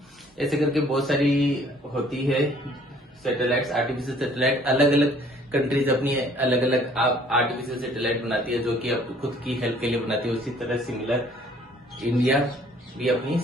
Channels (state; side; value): normal; both; correlation 0.57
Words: ऐसे करके बहुत सारी होती है सैटेलाइट्स, आर्टिफिशियल सैटेलाइट। अलग अलग कंट्रीज अपनी अलग अलग आर्टिफिशियल सैटेलाइट बनाती है, जो कि खुद की हेल्प के लिए बनाती है। उसी तरह सिमिलर इंडिया भी अपनी